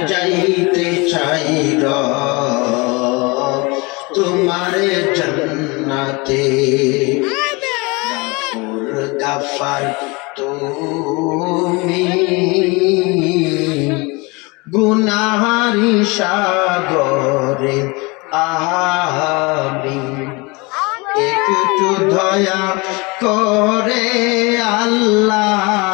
যাইতে চাইর তোমার জান্নাতে গাফার তুমি গুনাহারি সাগরে আমি একটু দয়া করে আল্লাহ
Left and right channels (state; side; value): quieter; right; 26.6 dB